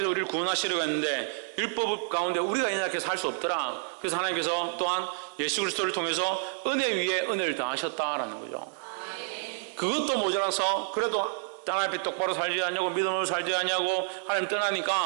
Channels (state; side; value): silent; left; digital silence